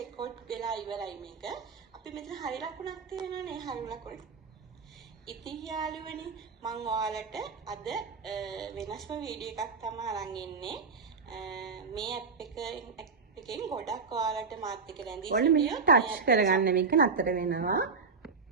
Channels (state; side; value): quieter; left; 4.9 dB